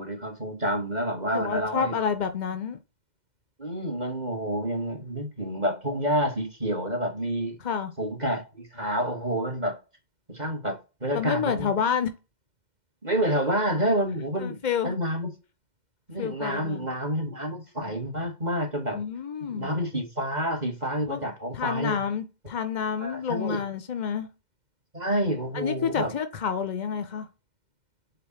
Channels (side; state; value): left; late; 2.1 ms